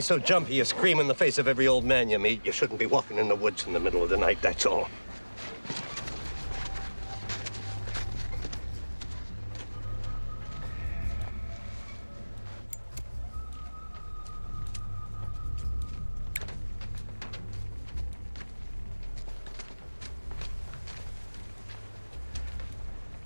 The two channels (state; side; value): inverted; both; correlation -1.00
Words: jumpy you scream in the face of every old man you meet, you shouldn't be walking in the woods in the middle of the night, that's all.